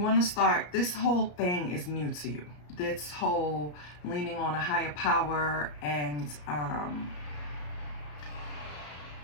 to start, this whole thing is new to you. This whole leaning on a higher power and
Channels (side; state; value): right; late; 34 ms